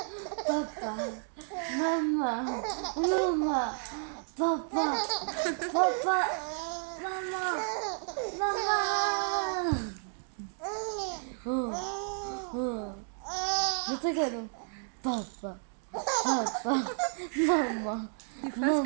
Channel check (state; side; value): silent; left; 57 dB below the other